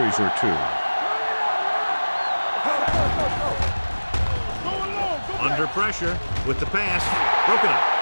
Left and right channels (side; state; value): both; inverted; correlation -1.00